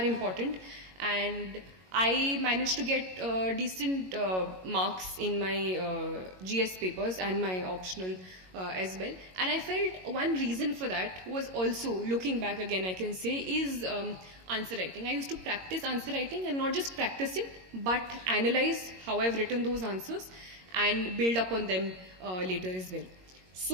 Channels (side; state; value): left; late; 22 ms